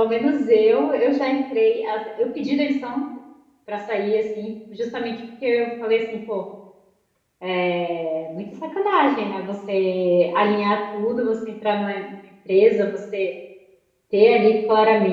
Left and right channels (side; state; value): both; identical; correlation 1.00